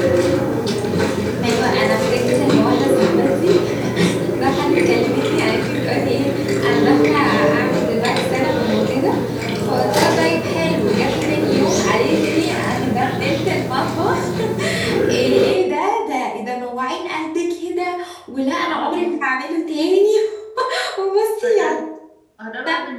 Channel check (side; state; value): both; identical; correlation 1.00